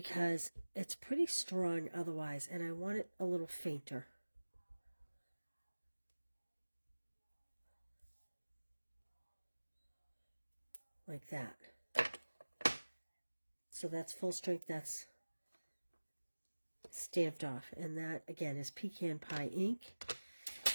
it's pretty strong otherwise, and I want it a little fainter. Like that. So that's full strength, that's stamped off. And that, again, is Pecan Pie ink.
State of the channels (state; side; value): inverted; both; correlation -1.00